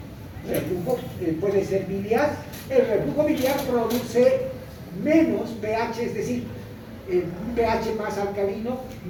Reflujo puede ser biliar. El reflujo biliar produce menos pH, es decir, un pH más alcalino,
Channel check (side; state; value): both; identical; correlation 1.00